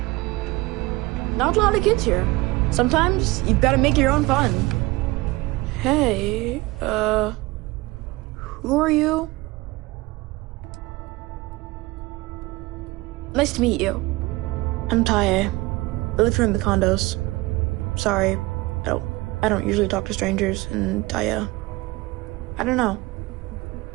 Not a lot of kids here. Sometimes you've got to make your own fun. Hey, who are you? Nice to meet you. I'm Tae. I live here in the condos. Sorry, I don't usually talk to strangers, and I don't know.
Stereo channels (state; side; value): quieter; left; 21.4 dB